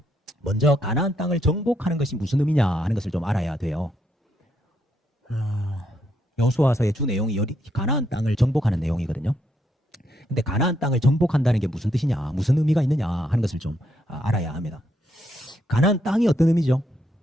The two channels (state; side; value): normal; both; correlation 0.77